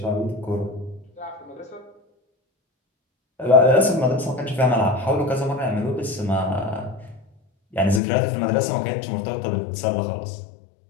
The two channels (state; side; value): drops out; right; at 8.0 s